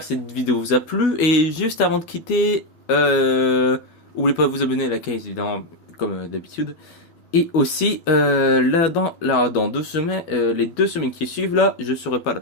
que cette vidéo vous a plu, et juste avant de quitter, n'oubliez pas de vous abonner à la chaîne évidemment comme d'habitude. Et aussi, dans 2 semaines, les 2 semaines qui suivent, là, je serai pas là.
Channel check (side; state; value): right; late; 12 ms